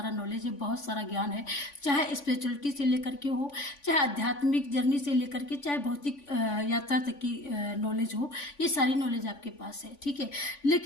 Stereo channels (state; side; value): late; right; 3.5 ms